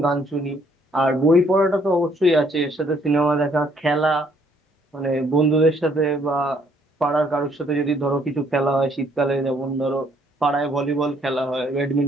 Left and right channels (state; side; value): normal; both; correlation 0.66